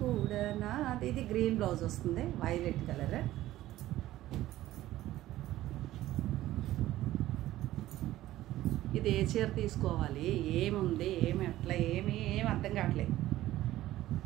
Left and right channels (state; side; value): quieter; left; 15.0 dB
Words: కూడా నాది, ఇది గ్రీన్ బ్లౌజ్ వస్తుంది, వైలెట్ కలర్. ఇది ఏ చీర తీసుకోవాలి, ఏముంది, ఏమి అట్లా ఏమి అర్థం కావట్లేదు.